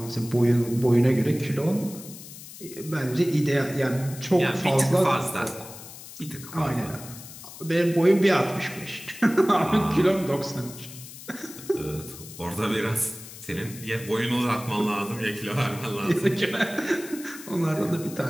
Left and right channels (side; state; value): left; noise; hiss, 15 dB below the sound